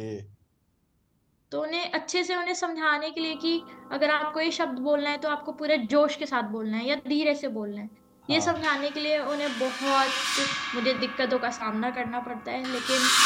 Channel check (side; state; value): both; identical; correlation 1.00